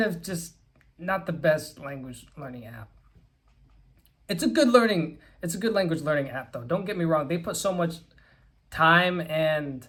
of just not the best language learning app. It's a good language learning app though. Don't get me wrong. They put so much time and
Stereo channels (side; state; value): both; identical; correlation 1.00